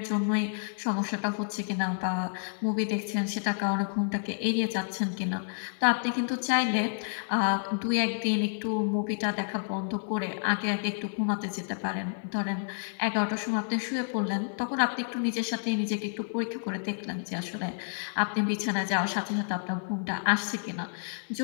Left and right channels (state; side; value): silent; right; digital silence